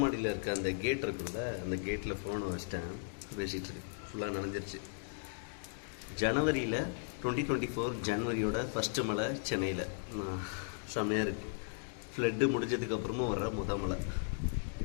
இருக்க அந்த கேட் இருக்குல்ல, அந்த கேட்டில் ஃபோனை வச்சிட்டேன், பேசிகிட்ருக்கு. ஃபுல்லாக நனைஞ்சிருச்சு. ஜனவரியில் 2024 ஜனவரியோட ஃபஸ்ட்டு மழை சென்னையில் செம்மையாக இருக்குது. ஃப்ளட்டு முடிஞ்சதுக்கப்புறமும் வர்ற மழை.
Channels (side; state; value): right; silent; digital silence